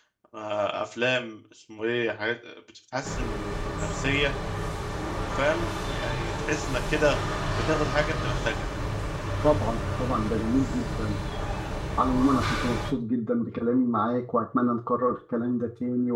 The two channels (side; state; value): both; identical; correlation 1.00